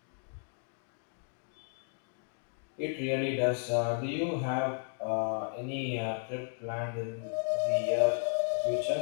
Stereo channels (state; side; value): silent; right; 55 dB below the other